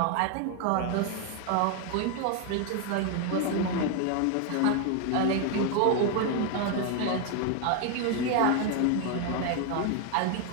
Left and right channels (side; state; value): both; different; correlation 0.01